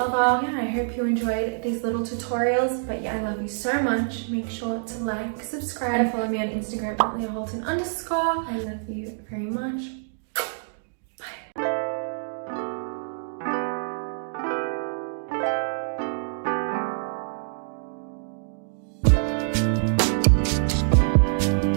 Yeah, I hope you enjoyed these little tutorials. But yeah, I love you so much. Make sure to like, subscribe, and follow me on Instagram at LeahHolton_. I love you very much.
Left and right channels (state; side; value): silent; left; digital silence